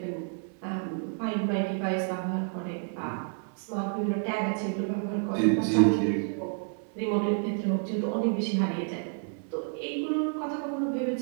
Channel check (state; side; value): silent; left; 58 dB below the other